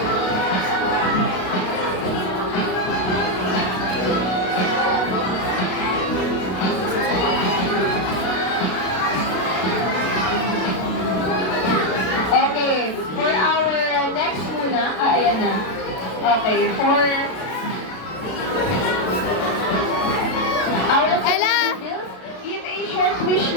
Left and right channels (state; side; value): late; right; 32 ms